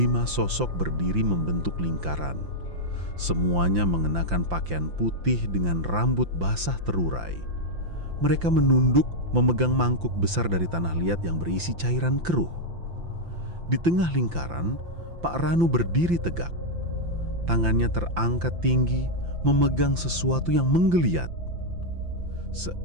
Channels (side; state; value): left; late; 5.8 ms